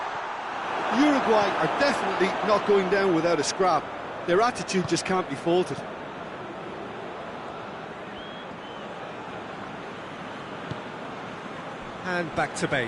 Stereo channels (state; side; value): identical; both; correlation 1.00